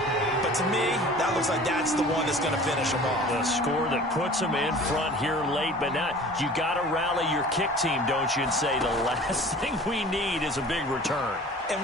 but to me, that looks like that's the one that's going to finish them off. The score that puts them in front here late, but now you got to rally your kick team, don't you, and say the last thing we need is a big return. And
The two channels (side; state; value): both; normal; correlation 0.44